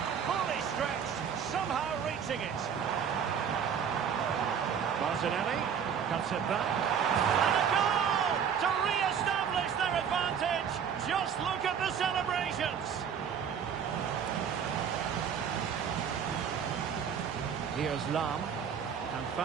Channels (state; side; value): quieter; left; 7.6 dB